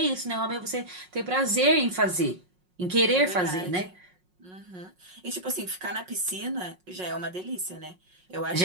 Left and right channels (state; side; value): late; left; 5.5 ms